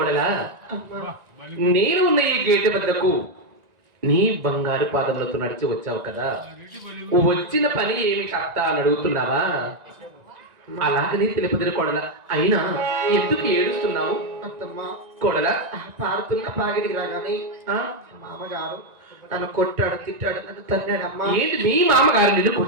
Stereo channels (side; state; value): left; late; 1.9 ms